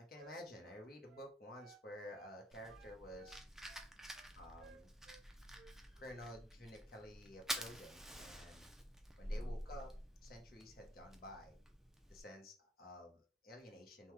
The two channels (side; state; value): both; normal; correlation 0.66